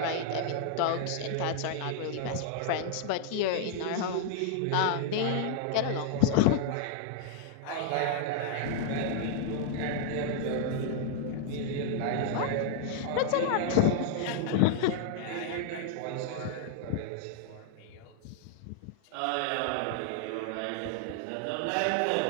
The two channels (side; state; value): both; different; correlation -0.01